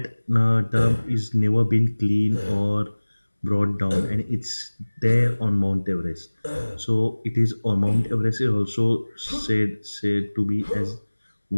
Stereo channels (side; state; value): both; inverted; correlation -1.00